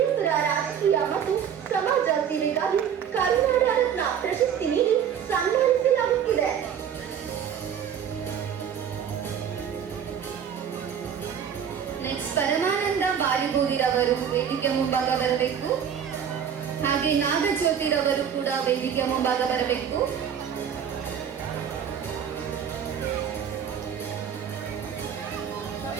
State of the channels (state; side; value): quieter; left; 8.3 dB